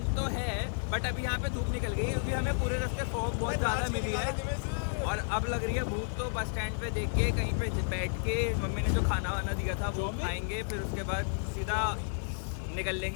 तो है, बट अभी यहाँ पे धूप निकल गई, क्योंकि हमें पूरे रास्ते फॉग बहुत ज़्यादा मिली है। और अब लग रही है भूख, तो बस स्टैंड पे देख के कहीं पे बैठ के मम्मी ने जो खाना वाना दिया था वो खाएंगे, फिर उसके बाद सीधा निकल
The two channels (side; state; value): right; silent; 57 dB below the other